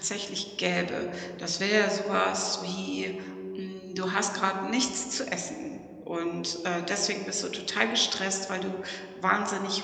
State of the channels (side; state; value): both; identical; correlation 1.00